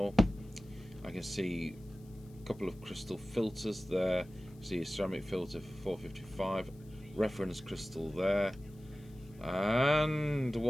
I can see a couple of crystal filters there. See a ceramic filter for 455. Reference crystal there. And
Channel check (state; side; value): noise; left; hiss, 29 dB below the sound